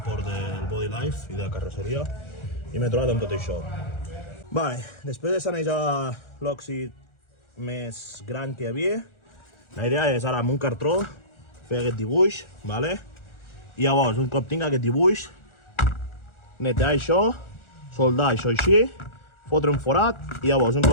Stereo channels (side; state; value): right; late; 1.4 ms